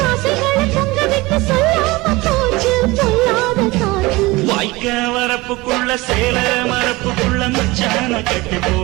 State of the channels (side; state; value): left; quieter; 21.5 dB